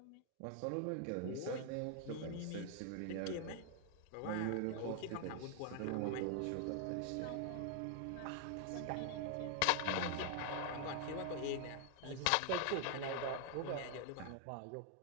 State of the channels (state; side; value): different; both; correlation 0.00